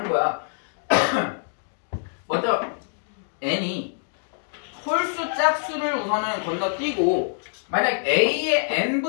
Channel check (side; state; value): right; silent; digital silence